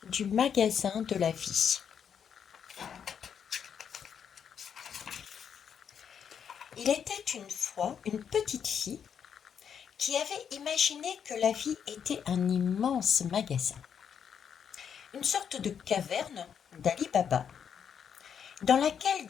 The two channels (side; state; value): right; quieter; 7.8 dB